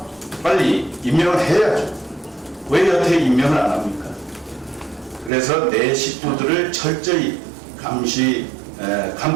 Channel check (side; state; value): left; drops out; at 5.3 s